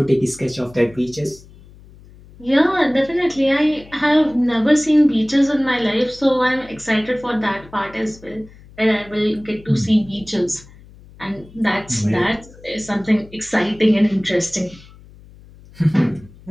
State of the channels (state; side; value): noise; left; hum, 22 dB below the sound